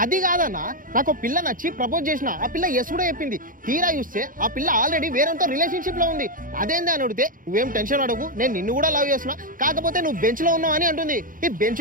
అది కాదన్నా, నాకు పిల్ల నచ్చి ప్రపోజ్ చేసిన, ఆ పిల్ల ఎస్ కూడా చెప్పింది. తీరా చూస్తే ఆ పిల్ల ఆల్రెడీ వేరేతో రిలేషన్షిప్ లో ఉంది. అదేంది అని అడిగితే నువ్వేం టెన్షన్ అడగు, నేను నిన్ను కూడా లవ్ చేస్తున్నా, కాకపోతే నువ్వు బెంచ్ లో ఉన్నావు అని అంటుంది. ఈ బెంచ్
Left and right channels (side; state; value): left; late; 0.40 ms